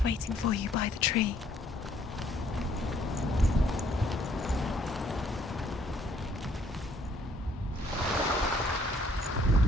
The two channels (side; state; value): both; normal; correlation 0.63